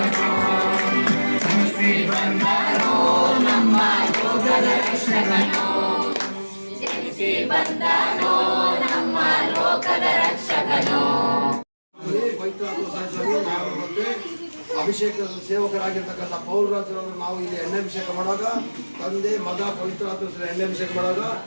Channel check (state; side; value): inverted; both; correlation -1.00